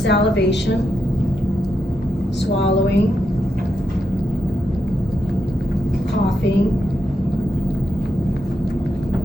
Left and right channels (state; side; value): normal; both; correlation 0.84